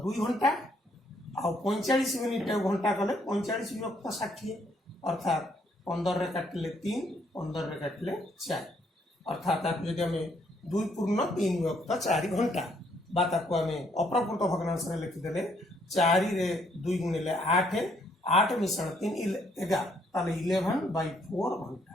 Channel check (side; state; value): both; normal; correlation 0.69